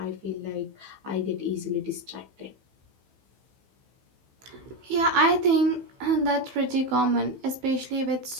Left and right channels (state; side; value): late; left; 15 ms